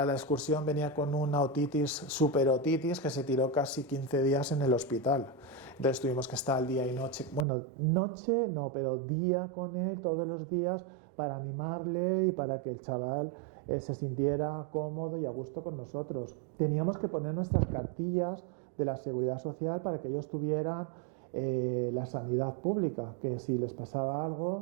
la excursión, venía con una superotitis, que se tiró casi 15 días en el hospital. Entonces tuvimos que estar día y noche, bueno, noche no, pero día con él todos los días, para animarle y para que el chaval se sintiera cómodo y a gusto con nosotros. Teníamos que poner nuestras cartillas de la Seguridad Social para que ellos tuvieran la sanidad pública, que si les pasaba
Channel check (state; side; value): drops out; left; at 7.5 s